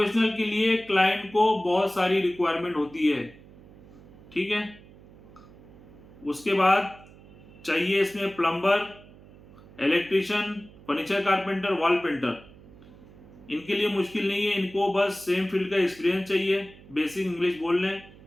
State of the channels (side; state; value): right; noise; hum, 22 dB below the sound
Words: के लिए क्लाइंट को बहुत सारी रिक्वायरमेंट होती है, ठीक है। उसके बाद चाहिए इसमें plumber, electrician, furniture carpenter, wall painter, इनके लिए मुश्किल नहीं है, इनको बस सेम फील्ड का एक्सपीरियंस चाहिए, बेसिक इंग्लिश बोल लें,